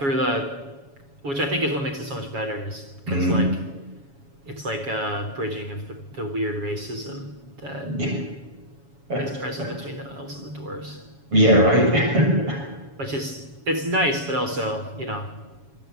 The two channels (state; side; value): late; left; 7.2 ms